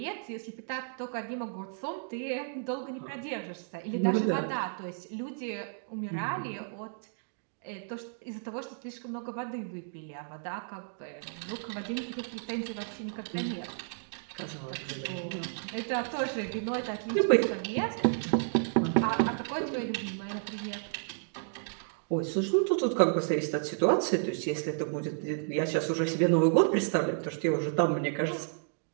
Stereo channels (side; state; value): left; silent; digital silence